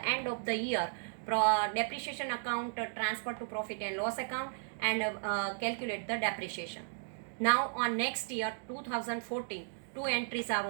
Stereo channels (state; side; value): silent; left; digital silence